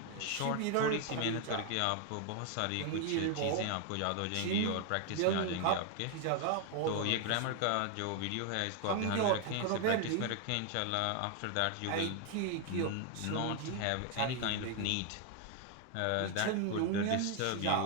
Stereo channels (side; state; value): both; different; correlation 0.01